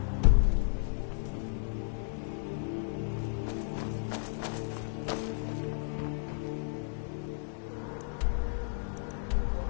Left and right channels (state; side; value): silent; right; 55 dB below the other